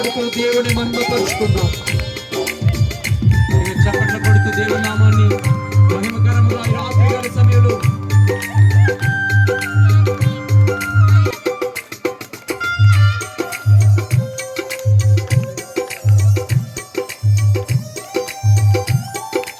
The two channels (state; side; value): identical; both; correlation 1.00